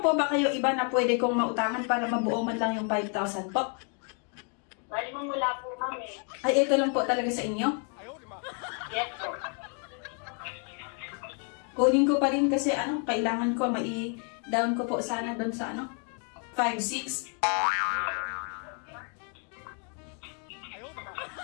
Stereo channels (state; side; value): quieter; right; 39.7 dB